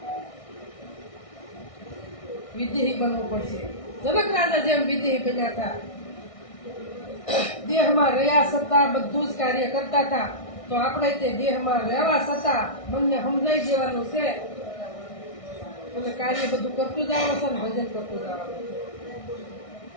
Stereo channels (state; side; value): late; right; 1.6 ms